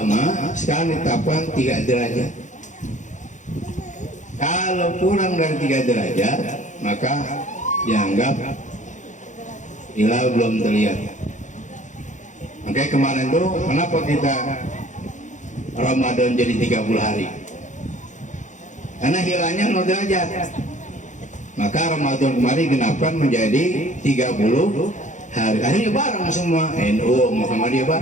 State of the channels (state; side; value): late; right; 0.35 ms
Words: sekarang ditetapkan 3 derajat. Kalau kurang dari 3 derajat maka dianggap hilal belum terlihat. Makanya kemarin tuh kenapa kita Ramadan jadi 30 hari? Karena hilalnya 0 derajat. Maka Ramadan kemarin genapkan menjadi 30 hari. Akhirnya bareng semua NU Muhammadiyah